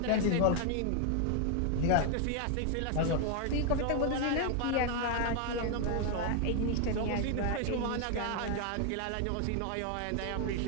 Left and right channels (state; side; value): different; both; correlation 0.00